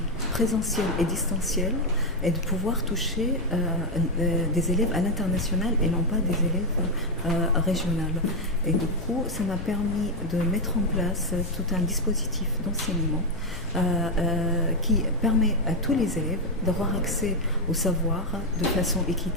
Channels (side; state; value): both; normal; correlation 0.04